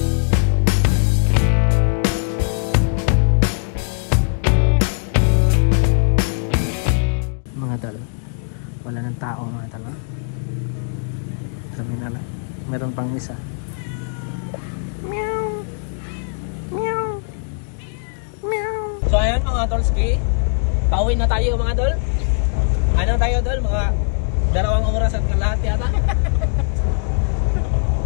Wala ng tao mga talo. Sabi na lang, meron pang isa. Meow. Meow. Meow. So ayan mga Tolski, pauwi na tayo mga tol. Ano tayo tol? Mga 2 oras at kalahati yata.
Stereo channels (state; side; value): silent; right; digital silence